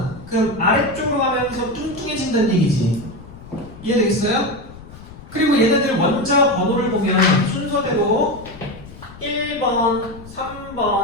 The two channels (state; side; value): noise; left; rumble, 17 dB below the sound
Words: 그럼 아래쪽으로 가면서 뚱뚱해진다는 얘기지. 이해되겠어요? 그리고 얘네들 원자 번호를 보면 순서대로 1번,